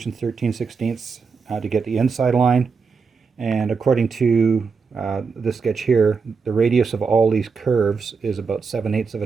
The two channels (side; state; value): left; quieter; 5.2 dB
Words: 13/16 to get the inside line, and according to this sketch here, the radius of all these curves is about 7/8 of